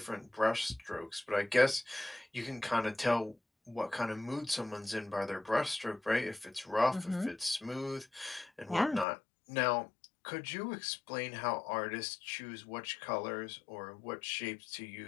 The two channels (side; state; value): right; drops out; at 9.1 s